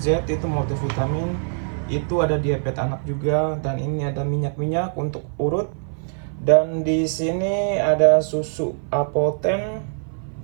itu multivitamin, itu ada diabetes anak juga. Dan ini ada minyak-minyak untuk urut. Dan di sini ada susu Apoten,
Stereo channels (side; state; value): left; silent; 56 dB below the other